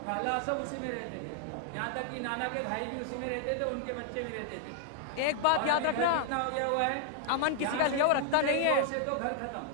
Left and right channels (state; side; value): different; both; correlation 0.00